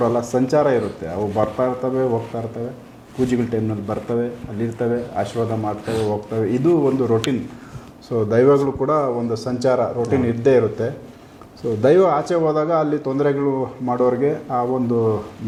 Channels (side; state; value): both; identical; correlation 1.00